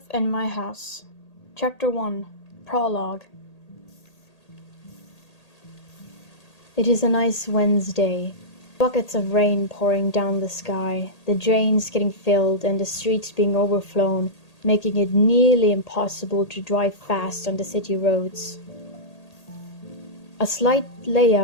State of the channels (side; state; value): right; late; 1.8 ms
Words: in My House. Chapter 1. Prologue. It is a nice Wednesday. Buckets of rain pouring down the sky, the drains getting filled and the streets being overflown, making it nearly impossible to drive fast on the city roads. A slight